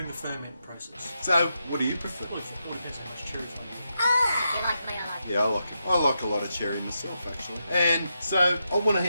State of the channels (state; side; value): inverted; both; correlation -0.85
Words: the ferment process. So, what do you prefer? Well, it all depends how much cherries they have. If you like me, I like Yeah, I like it. I like a lot of cherry myself, actually. And so, I want to